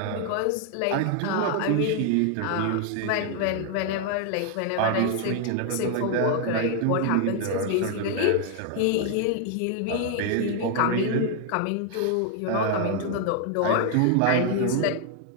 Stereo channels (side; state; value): both; different; correlation 0.00